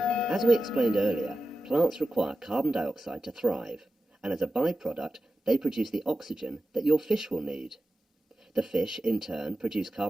As we explained earlier, plants require carbon dioxide to thrive, and as a byproduct, they produce the oxygen that your fish will need. The fish, in turn, produce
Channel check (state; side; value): normal; both; correlation 0.93